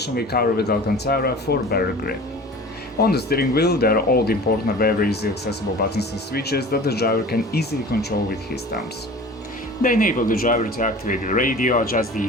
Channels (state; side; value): normal; both; correlation 0.40